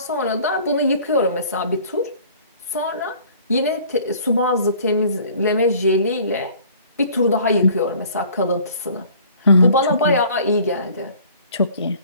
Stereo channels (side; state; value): both; inverted; correlation -0.52